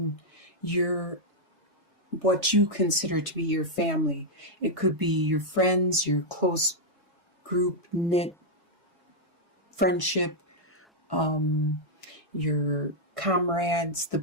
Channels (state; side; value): normal; both; correlation -0.03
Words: your what you consider to be your family. It could be your friends, your close group knit friendship, your comrades, the